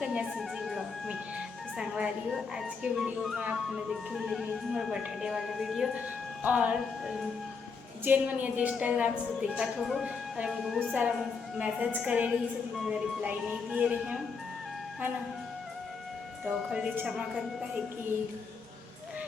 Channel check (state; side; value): quieter; right; 5.1 dB